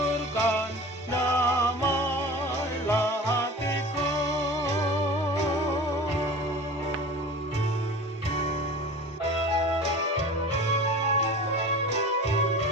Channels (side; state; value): both; normal; correlation 0.38